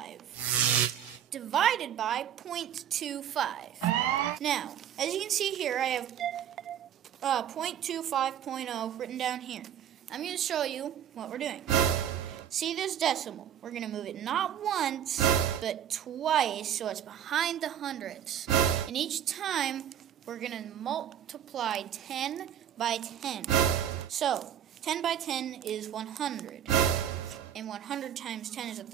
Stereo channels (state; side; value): quieter; left; 9.7 dB